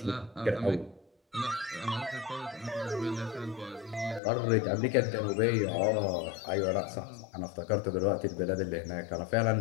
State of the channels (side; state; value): right; drops out; at 4.2 s